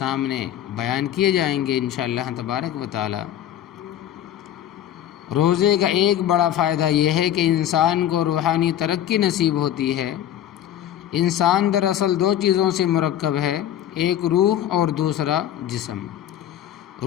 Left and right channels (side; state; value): right; quieter; 11.1 dB